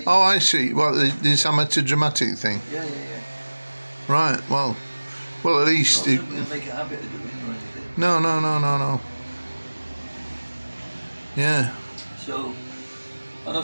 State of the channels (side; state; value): both; inverted; correlation -1.00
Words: Oh, I see. Well, this amateur dramatic thing. Yeah. Right. Well, at least. Not something to make a habit of doing or anything. No. Yeah. So, and I